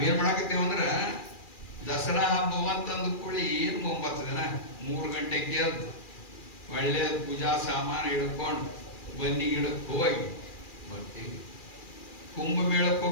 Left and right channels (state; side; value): late; right; 2.4 ms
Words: ಮಾಡಾಕತ್ತೇವ ಅಂದ್ರ ದಸರಾ ಹಬ್ಬ ಅಂತಂದು ಕೂಡಿ ಏನು 9 ದಿನ 3 ಗಂಟೆಗೆ ಎದ್ದು ಒಳ್ಳೆ ಪೂಜಾ ಸಾಮಾನು ಹಿಡ್ಕೊಂಡು ಬನ್ನಿ ಗಿಡಕ್ಕೆ ಹೋಗಿ ಬರ್ತೀವಿ. ಕುಂಭಮೇಳಕ್ಕೆ